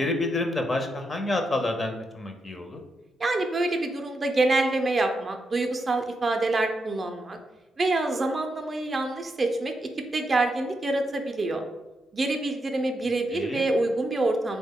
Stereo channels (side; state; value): both; normal; correlation 0.84